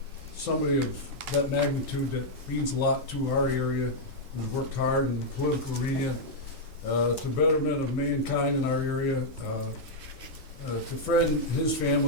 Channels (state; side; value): normal; both; correlation -0.04